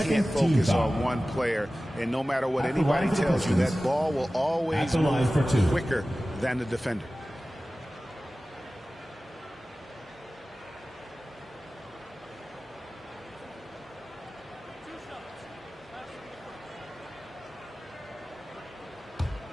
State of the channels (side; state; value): both; normal; correlation 0.96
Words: focus on one player, and no matter what anybody tells you, that ball will always move quicker than the defender.